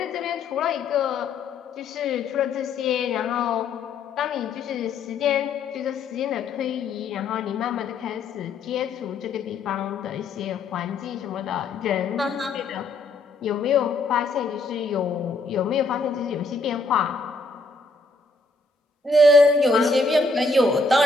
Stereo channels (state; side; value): quieter; right; 3.5 dB